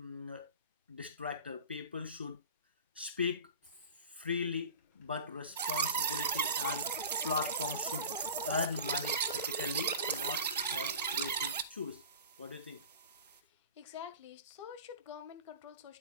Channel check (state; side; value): inverted; both; correlation -0.36